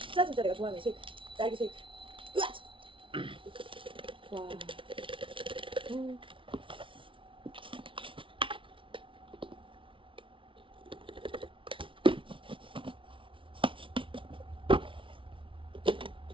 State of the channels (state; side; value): late; left; 0.25 ms